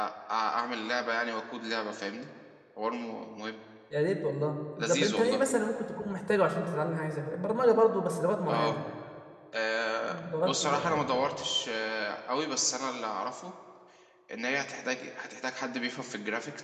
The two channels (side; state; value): both; identical; correlation 1.00